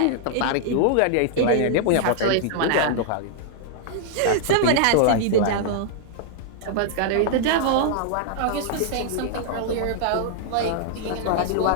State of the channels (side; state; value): both; different; correlation -0.01